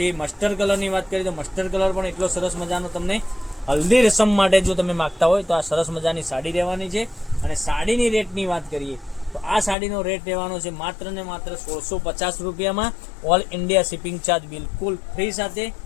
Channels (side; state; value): right; drops out; at 9.8 s